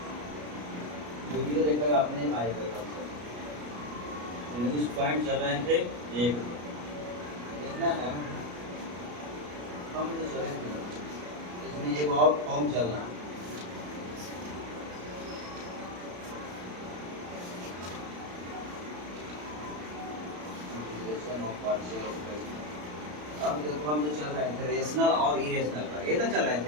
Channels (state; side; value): late; left; 33 ms